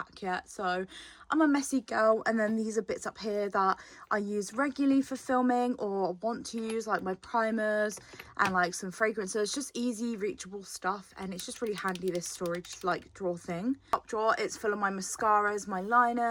yet. So I'm a messy girl. And then these are bits up here that I use regularly for filming or want to use, like my primers and like some fragrances. Just easy reachable stuff, and it's just really handy, this storage like drawer thing. Top drawer, it's full of my mascaras, my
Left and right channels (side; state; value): both; identical; correlation 1.00